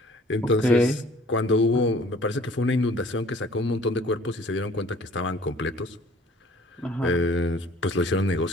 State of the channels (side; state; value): both; normal; correlation 0.53